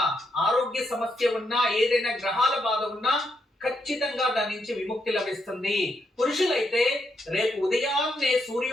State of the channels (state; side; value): normal; both; correlation 0.79